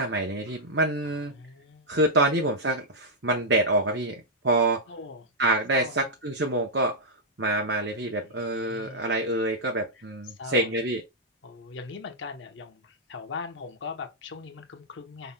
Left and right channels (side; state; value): both; normal; correlation -0.07